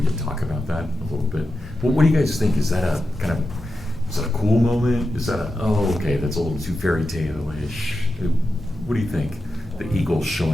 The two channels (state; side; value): normal; both; correlation 0.90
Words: can talk about that a little bit. Well, what do you guys think? Is that a kind of, is that a cool moment? Is that a, oh, okay, that's a little too fairy tale-ish? What do you think? The eagles